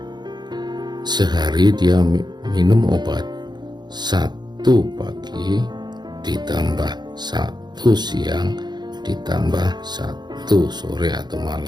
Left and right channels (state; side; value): late; left; 0.21 ms